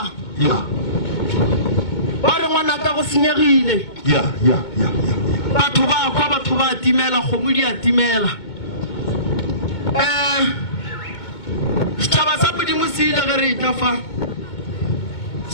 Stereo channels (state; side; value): late; right; 2.2 ms